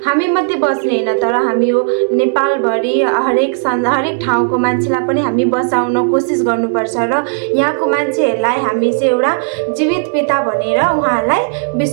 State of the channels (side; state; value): left; silent; digital silence